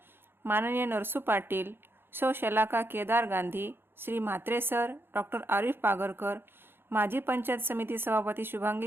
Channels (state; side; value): late; left; 0.10 ms